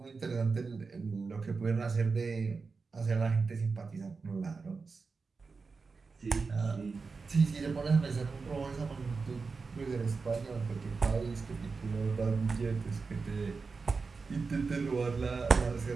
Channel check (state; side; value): quieter; left; 4.6 dB